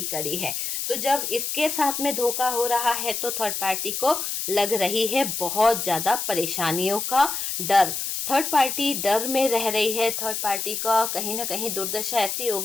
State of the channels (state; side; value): noise; left; hiss, 3 dB below the sound